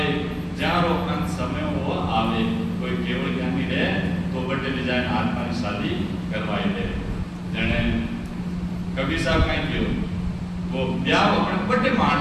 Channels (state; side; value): identical; both; correlation 1.00